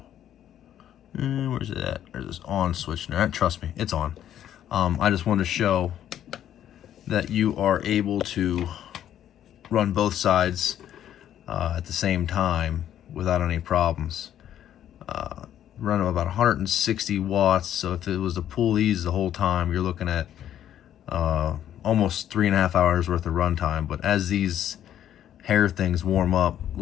where's it at? There's this on switch there. Trust me, it's on. I just wanted to show that you are able to run both sides at the same time without any problems. Run about 160 watts, so if it was to pull these the whole time, you're looking at almost 3.5 hours worth of run time. But as these hair things warm up,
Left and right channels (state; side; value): quieter; right; 10.8 dB